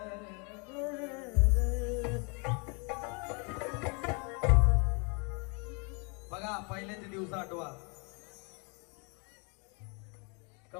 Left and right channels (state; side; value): quieter; right; 34.0 dB